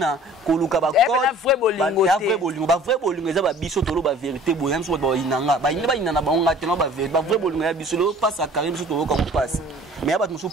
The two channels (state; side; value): normal; both; correlation 0.49